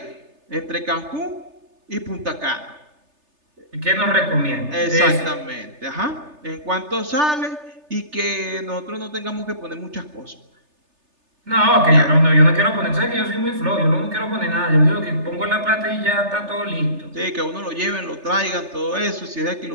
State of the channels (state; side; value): late; left; 3.3 ms